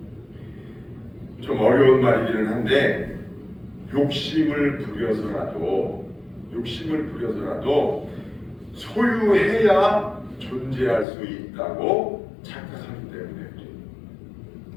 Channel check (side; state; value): right; drops out; at 11.1 s